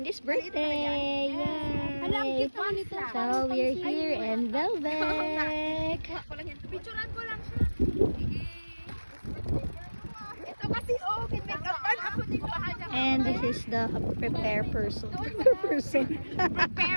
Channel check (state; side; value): inverted; both; correlation -1.00